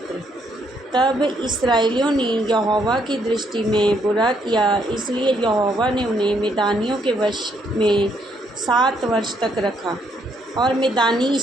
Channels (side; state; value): both; normal; correlation 0.72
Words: तब इस्राएलियों ने यहोवा की दृष्टि में बुरा किया, इसलिए यहोवा ने उन्हें मिदानियों के वश में 7 वर्ष तक रखा और मिदानी